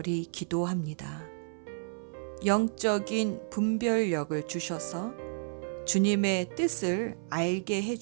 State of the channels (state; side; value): silent; left; 57 dB below the other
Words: 기도합니다. 영적인 분별력을 주셔서 주님의 뜻을 알게 해